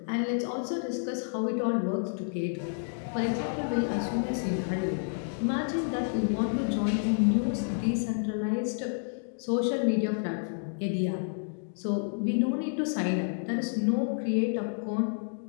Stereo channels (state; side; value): silent; right; digital silence